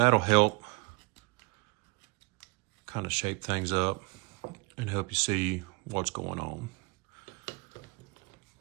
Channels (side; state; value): left; quieter; 26.7 dB